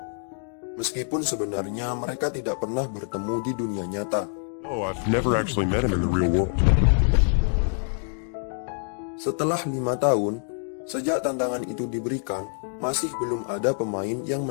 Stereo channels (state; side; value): silent; right; 61 dB below the other